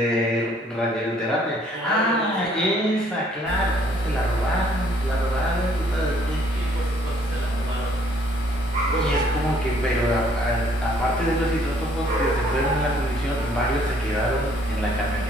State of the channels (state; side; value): normal; both; correlation 0.63